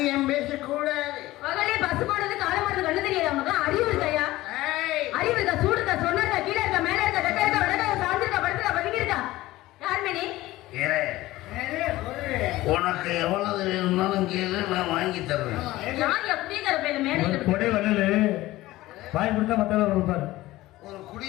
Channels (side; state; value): right; quieter; 17.4 dB